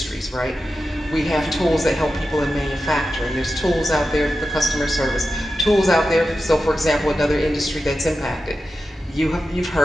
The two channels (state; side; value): normal; both; correlation 0.91